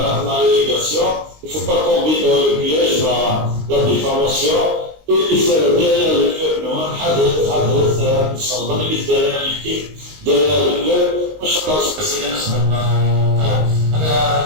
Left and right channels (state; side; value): late; left; 19 ms